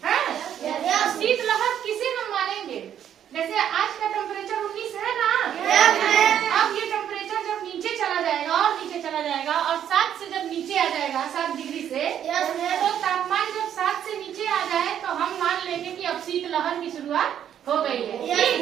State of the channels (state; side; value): quieter; left; 9.8 dB